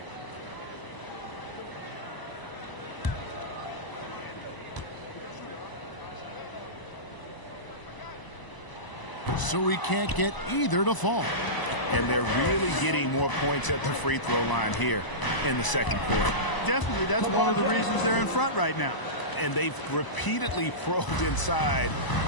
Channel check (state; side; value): late; right; 1.0 ms